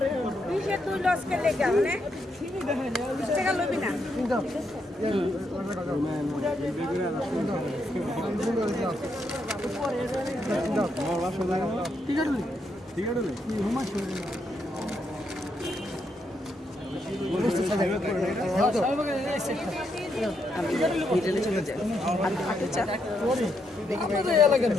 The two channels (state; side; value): normal; both; correlation 0.79